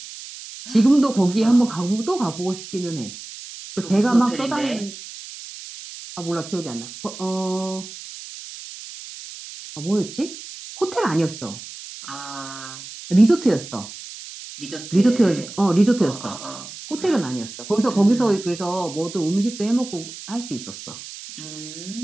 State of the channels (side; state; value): right; noise; hiss, 13 dB below the sound